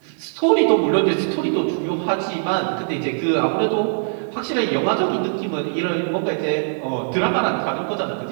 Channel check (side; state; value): left; silent; digital silence